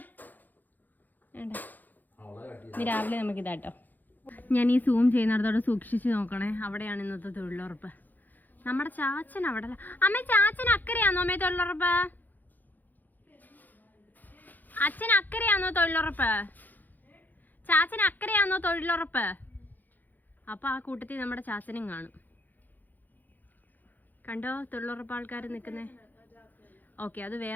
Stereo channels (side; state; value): right; late; 0.085 ms